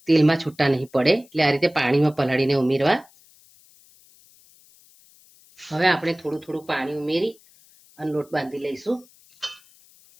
તેલમાં છૂટા નહીં પડે, એટલે આ રીતે પાણીમાં પલાળીને ઉમેરવા। હવે આપણે થોડું થોડું પાણી ઉમેરી અને લોટ બાંધી લઈશું।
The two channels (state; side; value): noise; left; hiss, 28 dB below the sound